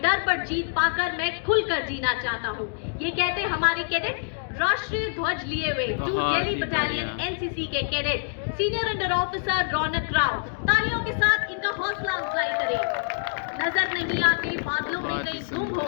डर पर जीत पाकर मैं खुलकर जीना चाहता हूँ। ये कहते हमारे कैडेट राष्ट्रीय ध्वज लिए हुए, जो बहुत दिल्ली ही बटालियन बढ़िया। एनसीसी के कैडेट सीनियर अंडर ऑफिसर रौनक राव। तालियों के साथ इनका हौसला अफजाई करें। नजर नहीं आते बादलों में बहुत ही कहीं तुम सुंदर।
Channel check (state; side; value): silent; right; digital silence